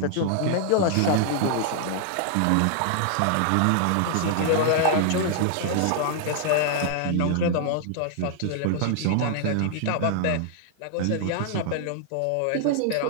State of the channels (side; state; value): both; different; correlation -0.01